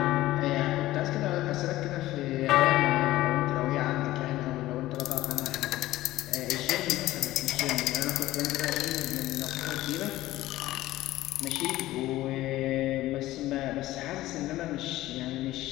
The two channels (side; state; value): right; quieter; 16.2 dB